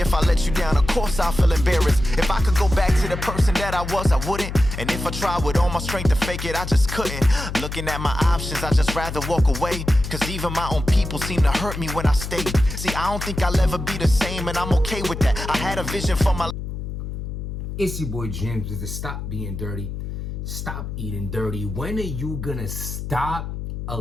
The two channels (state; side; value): noise; left; hum, 6 dB below the sound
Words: I let you down, of course I'll feel embarrassed. If I could go back to the person that I was, I wouldn't. And if I tried with all my strength to fake it, I just couldn't. Looking at my options, I just rather walk away. Cause even my own people seem to hurt me when I stay. See, I don't think I'll ever be the same, and I'm okay with that. I had a vision for my... It's your boy James with the Stop Being Dirty, Stop Eating Dirty. When are you gonna stop